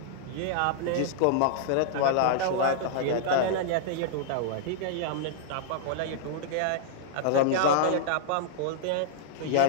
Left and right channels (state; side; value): different; both; correlation -0.02